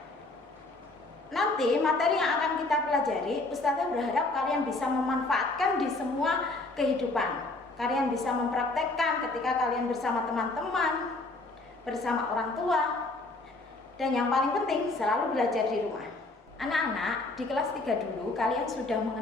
Nanti materi yang akan kita pelajari, Ustazah berharap kalian bisa memanfaatkan di semua kehidupan. Kalian bisa mempraktekkan ketika kalian bersama teman-teman, bersama orang tua, dan yang paling penting selalu belajar di rumah. Anak-anak, di kelas 3 dulu kalian sudah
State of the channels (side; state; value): right; quieter; 3.1 dB